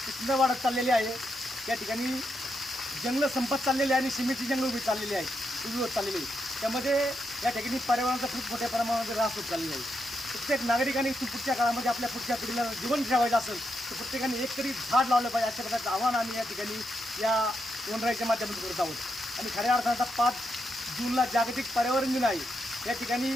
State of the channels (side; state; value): both; normal; correlation 0.82